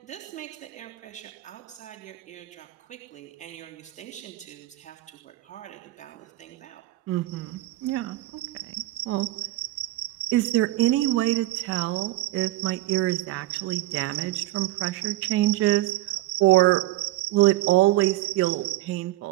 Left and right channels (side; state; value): left; quieter; 16.8 dB